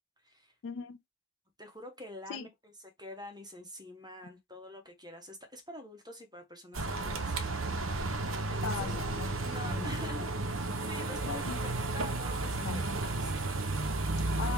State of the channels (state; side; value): normal; both; correlation 0.44